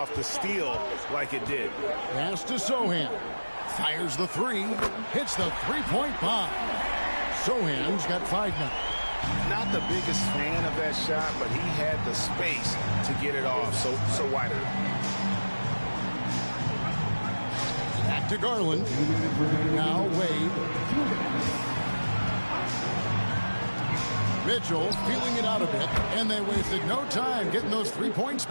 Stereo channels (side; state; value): both; inverted; correlation -1.00